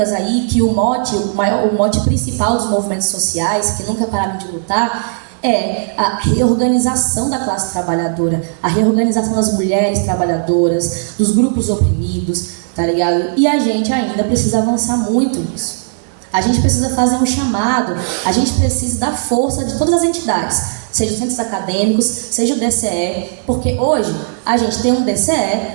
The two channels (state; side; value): silent; left; digital silence